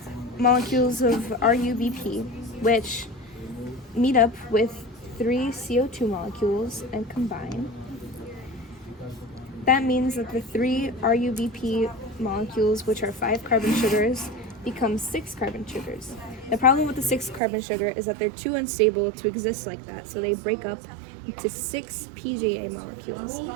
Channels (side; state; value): left; drops out; at 17.4 s